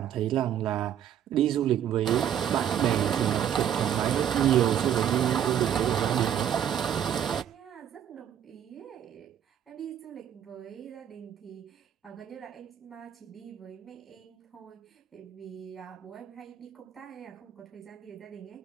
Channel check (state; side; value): quieter; left; 9.8 dB